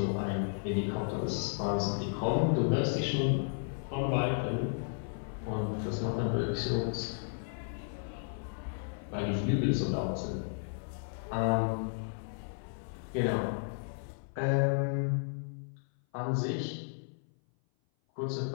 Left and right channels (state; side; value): silent; right; 55 dB below the other